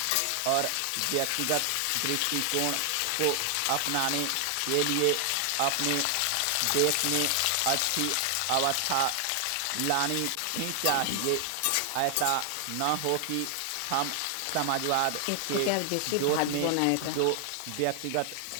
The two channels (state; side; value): different; both; correlation 0.00